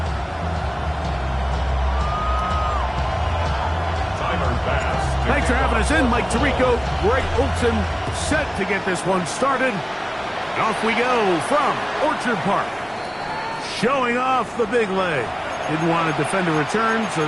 Thanks for having us in, Mike Tirico, Greg Olson, set to get this one started. And off we go from Orchard Park. Showing off the big leg. Didn't want to defend a return, so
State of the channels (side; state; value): both; identical; correlation 1.00